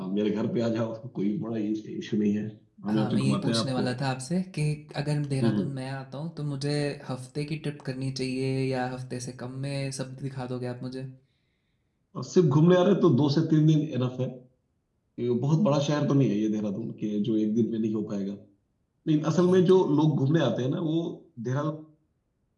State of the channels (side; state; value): both; identical; correlation 1.00